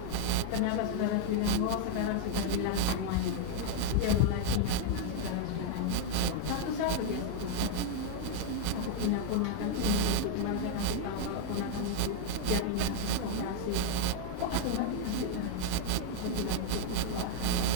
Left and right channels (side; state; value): both; different; correlation 0.00